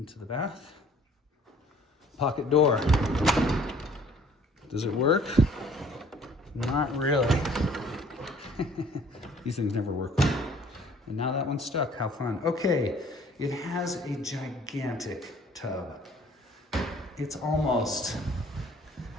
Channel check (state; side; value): normal; both; correlation 0.55